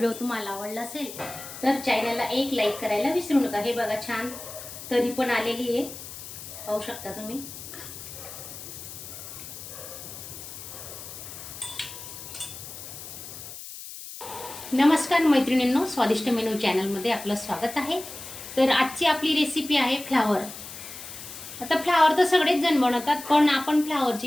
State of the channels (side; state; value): left; noise; hiss, 12 dB below the sound